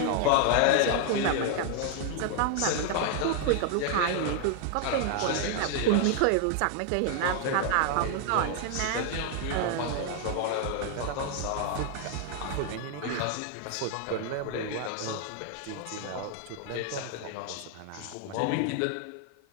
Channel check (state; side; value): different; both; correlation 0.00